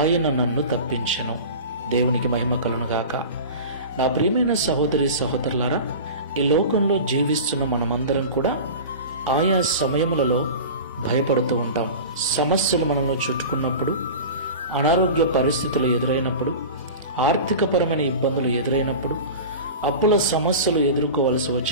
నన్ను తప్పించెను. దేవునికి మహిమ కలుగునుగాక. నా ప్రియమైన సహోదరి సహోదరులారా, ఈ లోకంలో జీవిస్తున్న మనమందరం కూడా ఆయా సమయములలో భయపడుతూ ఉంటాం. సమస్యలు మనల్ని చుట్టుకున్నప్పుడు, అనారోగ్య పరిస్థితులు ఎదురైనప్పుడు, ఆర్థికపరమైన ఇబ్బందులు ఎదురైనప్పుడు, అప్పుల సమస్యలు ఎదుర్కోవలసి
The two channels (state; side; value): inverted; both; correlation -0.33